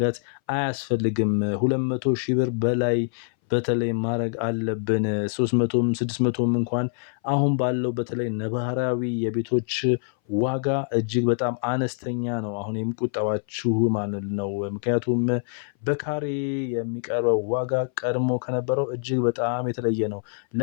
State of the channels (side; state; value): right; silent; 59 dB below the other